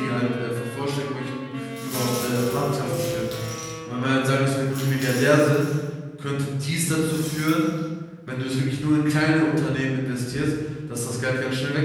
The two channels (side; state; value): both; identical; correlation 1.00